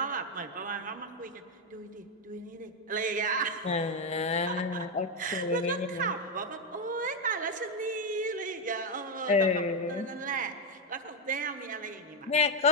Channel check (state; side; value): normal; both; correlation 0.04